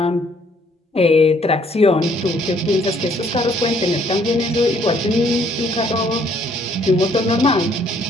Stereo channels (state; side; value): normal; both; correlation 0.64